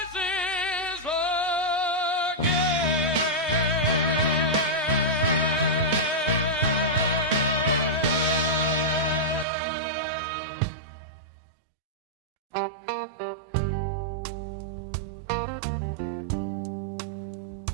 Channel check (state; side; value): drops out; left; at 9.5 s